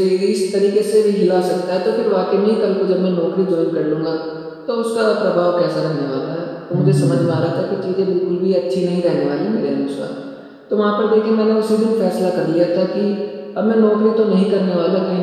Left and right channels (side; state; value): both; identical; correlation 1.00